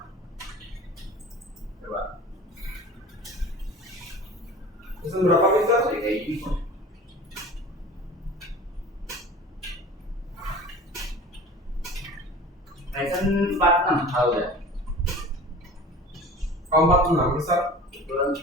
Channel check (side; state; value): both; normal; correlation 0.40